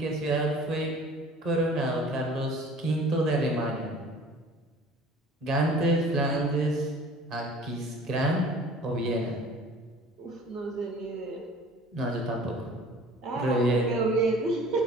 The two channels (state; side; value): normal; both; correlation 0.47